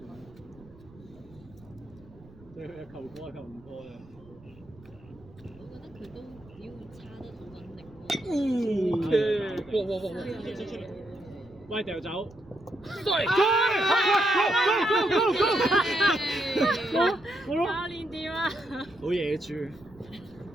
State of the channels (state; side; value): noise; right; rumble, 23 dB below the sound